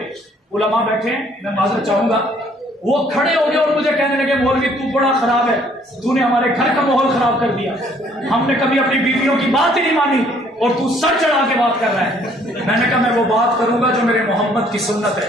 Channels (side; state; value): both; normal; correlation 0.62